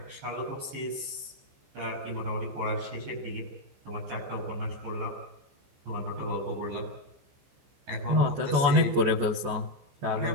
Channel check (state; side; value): late; left; 15 ms